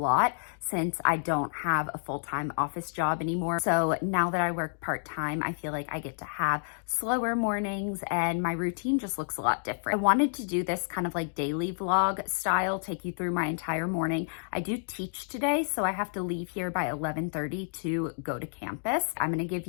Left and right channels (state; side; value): silent; right; digital silence